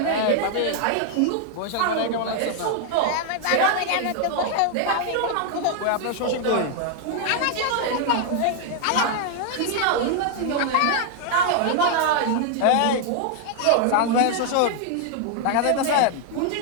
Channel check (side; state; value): both; different; correlation 0.00